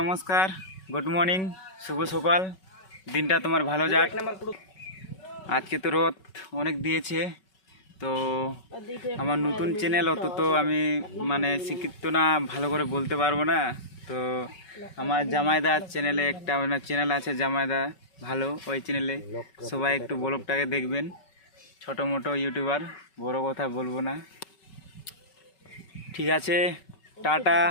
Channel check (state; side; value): late; right; 5.3 ms